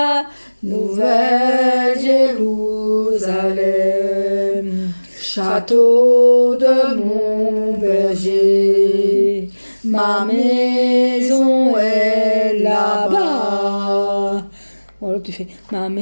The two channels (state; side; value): inverted; both; correlation -1.00